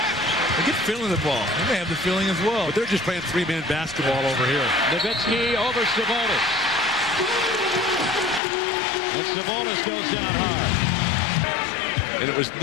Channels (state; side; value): drops out; right; at 8.4 s